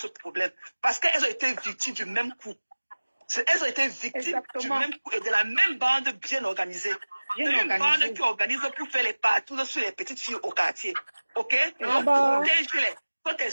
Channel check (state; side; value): inverted; both; correlation -1.00